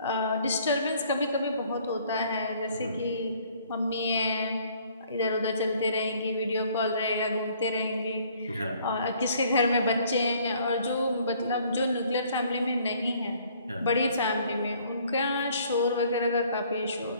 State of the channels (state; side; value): inverted; both; correlation -0.60